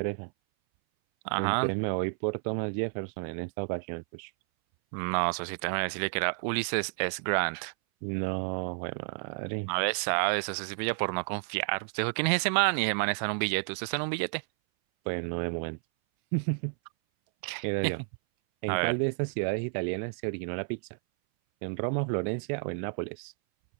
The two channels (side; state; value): left; silent; 57 dB below the other